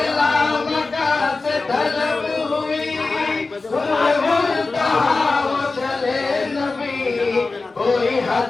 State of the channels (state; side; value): quieter; right; 3.7 dB